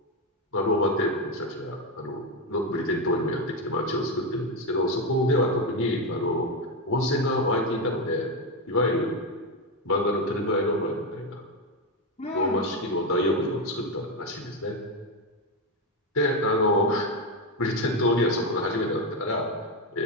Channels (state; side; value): normal; both; correlation 0.10